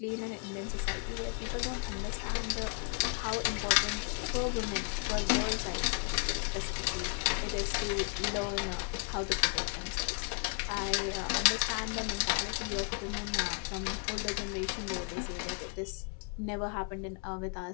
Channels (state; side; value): quieter; right; 38.9 dB